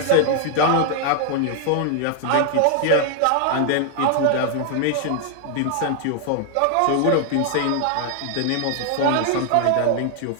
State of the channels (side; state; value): both; different; correlation 0.00